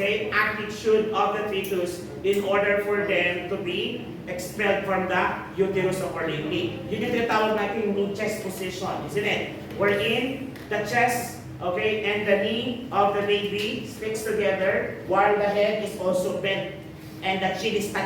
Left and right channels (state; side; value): identical; both; correlation 1.00